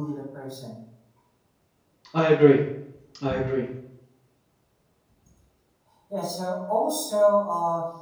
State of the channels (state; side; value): identical; both; correlation 1.00